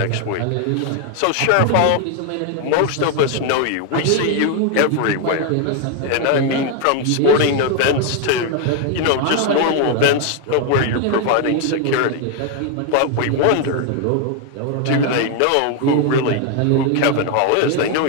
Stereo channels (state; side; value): different; both; correlation 0.01